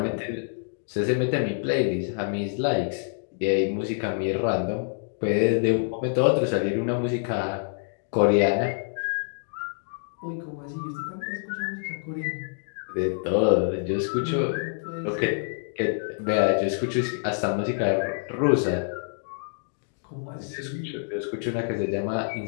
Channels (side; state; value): right; silent; digital silence